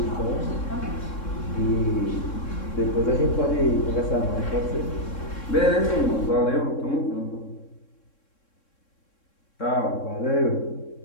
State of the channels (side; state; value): right; late; 3.7 ms